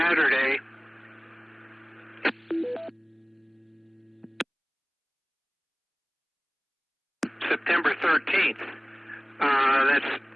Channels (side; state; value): both; identical; correlation 1.00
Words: September 13th. That's